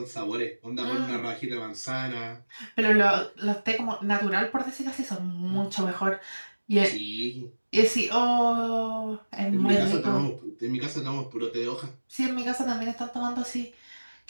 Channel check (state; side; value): inverted; both; correlation -1.00